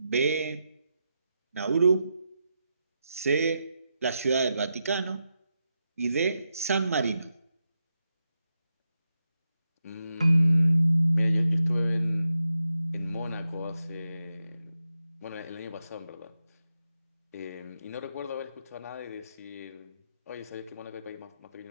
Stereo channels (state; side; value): inverted; both; correlation -0.87